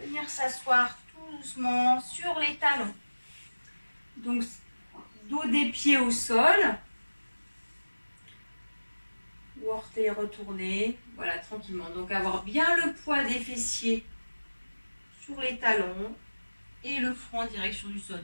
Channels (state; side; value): inverted; both; correlation -1.00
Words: s'asseoir tout doucement sur les talons. Donc, dos des pieds au sol. Ou orteils retournés. Voilà, tranquillement. Donc, avoir bien le poids des fessiers sur les talons et le front en direction du sol.